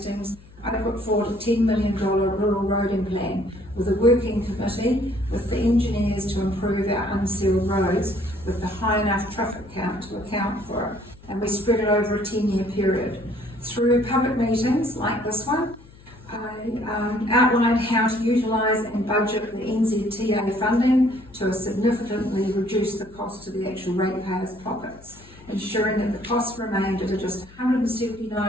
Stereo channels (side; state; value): left; noise; hum, 23 dB below the sound